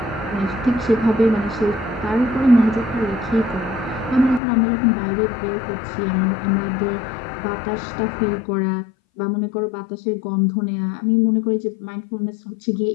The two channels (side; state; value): right; drops out; at 4.4 s